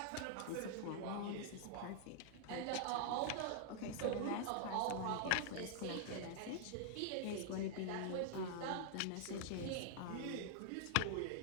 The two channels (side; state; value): both; different; correlation -0.01